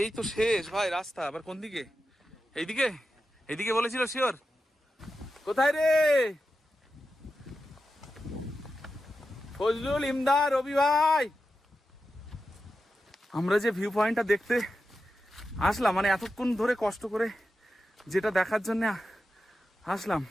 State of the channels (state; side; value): normal; both; correlation 0.90